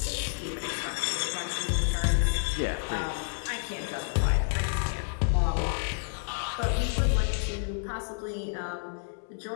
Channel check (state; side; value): silent; right; digital silence